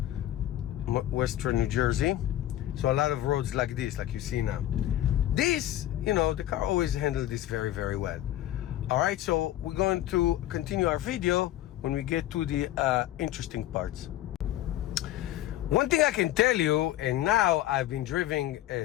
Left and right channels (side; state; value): right; quieter; 13.6 dB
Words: Western New Jersey. So a lot of roads like this, like you see now. This, you know, the car always handled this very, very well. All right, so we're going to continue our video when we get to the interesting parts. One thing I can tell you, and now I've been driving